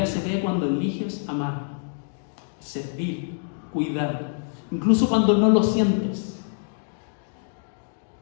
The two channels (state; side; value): silent; right; digital silence